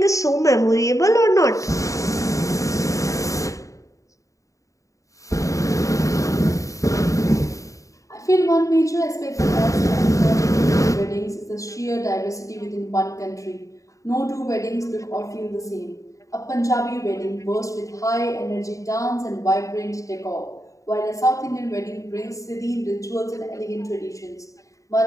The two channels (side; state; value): right; late; 0.16 ms